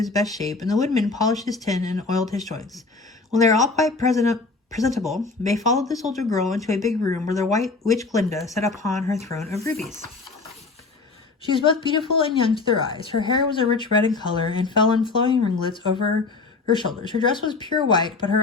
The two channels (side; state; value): right; quieter; 4.0 dB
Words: best shape, and the woodman polished his tin and oiled his joints. When they were all quite presentable, they followed the soldier girl into a big room where the white witch Glinda sat upon her throne of rubies. She was both beautiful and young to their eyes. Her hair was a rich red in color and fell in flowing ringlets over her shoulders. Her dress was pure white, but